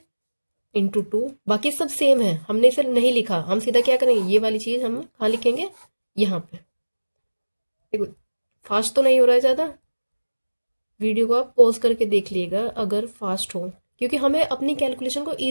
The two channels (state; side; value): inverted; both; correlation -1.00